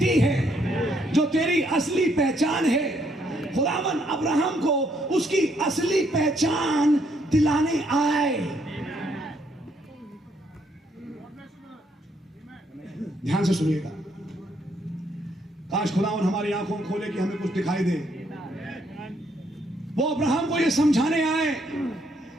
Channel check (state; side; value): normal; both; correlation 0.71